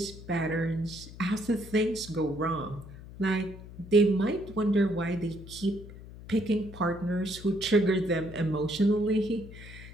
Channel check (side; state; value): left; noise; hum, 15 dB below the sound